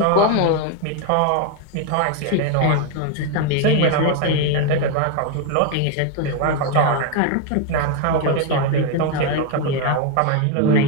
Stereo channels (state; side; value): different; both; correlation 0.01